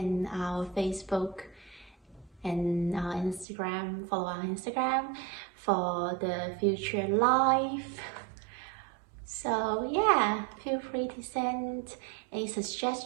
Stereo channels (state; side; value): drops out; left; at 3.5 s